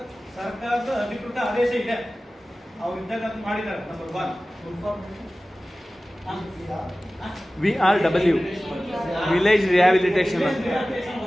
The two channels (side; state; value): both; normal; correlation 0.96